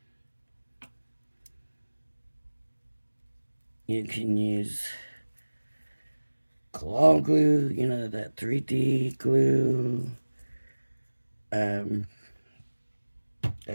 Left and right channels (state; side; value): inverted; both; correlation -1.00